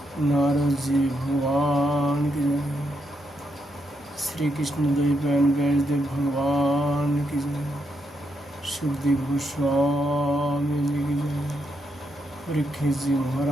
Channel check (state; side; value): normal; both; correlation 0.80